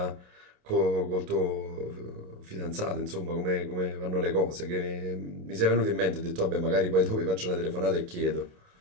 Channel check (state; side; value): late; left; 28 ms